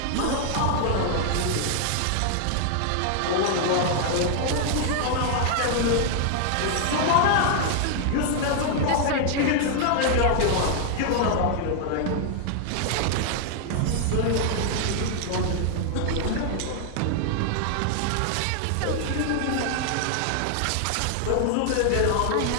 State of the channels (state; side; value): different; both; correlation 0.00